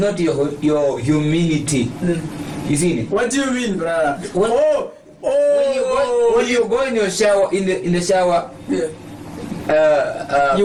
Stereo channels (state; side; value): identical; both; correlation 1.00